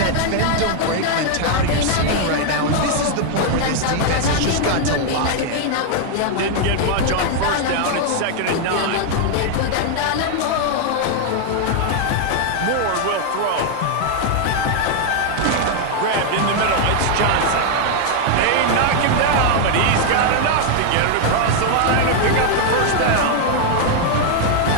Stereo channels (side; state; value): both; different; correlation 0.00